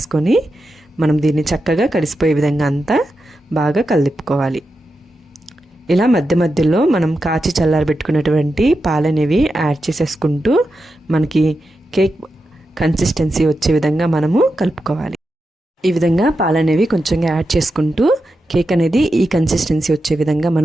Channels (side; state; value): both; normal; correlation 0.89